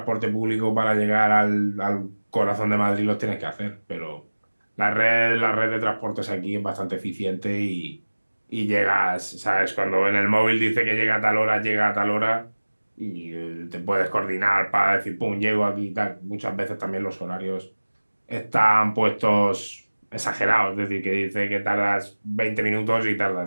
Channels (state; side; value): inverted; both; correlation -1.00